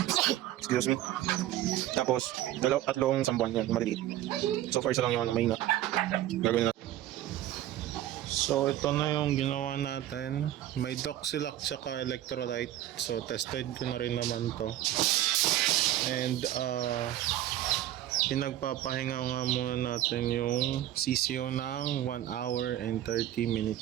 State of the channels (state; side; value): quieter; left; 13.3 dB